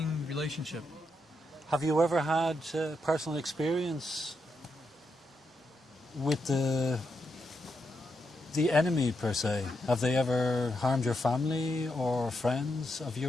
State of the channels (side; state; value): both; normal; correlation 0.83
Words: relationship. Have you ever had personal experience with the enemy, per se? Have they ever harmed your family or friends of